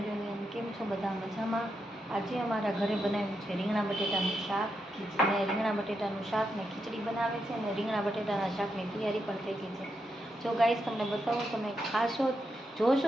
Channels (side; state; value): both; normal; correlation 0.83